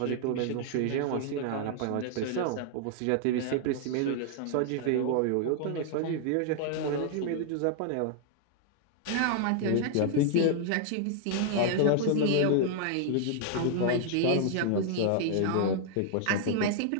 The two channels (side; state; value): both; different; correlation 0.00